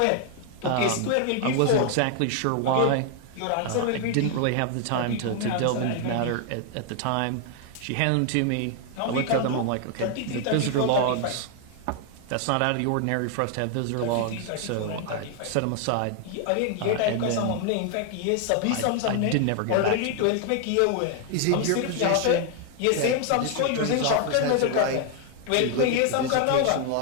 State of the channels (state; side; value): different; both; correlation 0.00